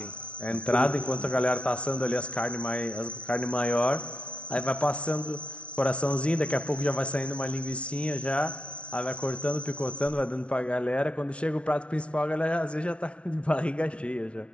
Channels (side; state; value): right; late; 0.061 ms